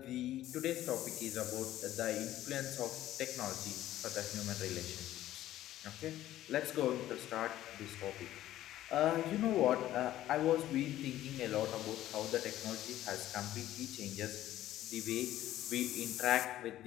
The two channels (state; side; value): quieter; right; 13.7 dB